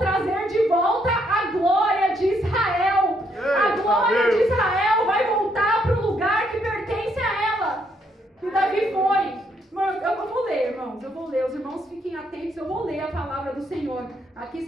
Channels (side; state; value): both; normal; correlation 0.73